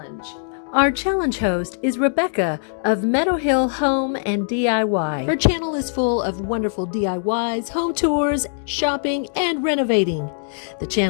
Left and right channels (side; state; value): right; silent; digital silence